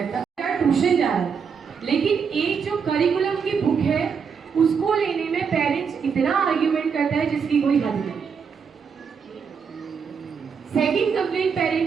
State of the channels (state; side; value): quieter; left; 6.3 dB